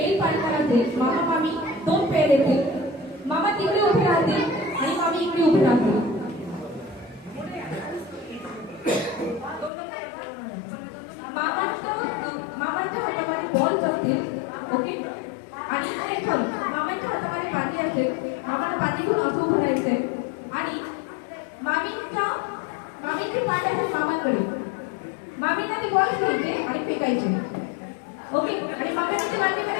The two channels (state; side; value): drops out; right; at 9.7 s